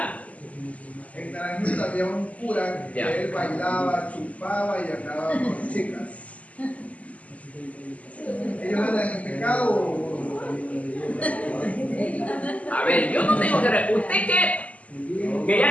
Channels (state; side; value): late; right; 0.070 ms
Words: había un cura que Ya. él bailaba, chupaba y andaba con chicas. ¿Ellos andan en pecado? A ver, yo no tengo que... ¿Usted que